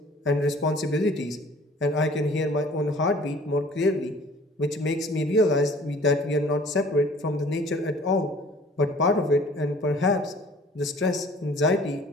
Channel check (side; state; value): both; normal; correlation 0.51